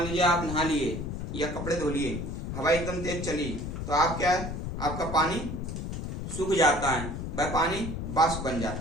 लीजिए आप नहा लिए या कपड़े धो लिए, हवा एकदम तेज चली तो आप क्या है, आपका पानी सूख जाता है, वह पानी वाष्प बन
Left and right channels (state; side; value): noise; left; rumble, 5 dB below the sound